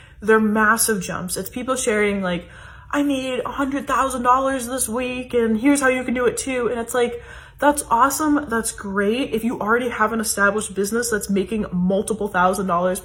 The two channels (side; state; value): both; identical; correlation 1.00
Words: they're massive jumps. It's people sharing like, I made $100,000 this week and here's how you can do it too. And it's like, that's awesome. That's great. If you already have an established business that's making multiple $1,000s